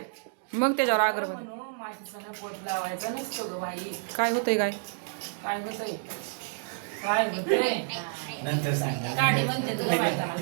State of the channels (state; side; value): silent; left; digital silence